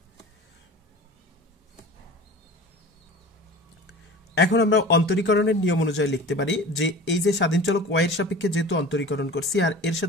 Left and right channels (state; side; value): normal; both; correlation 0.38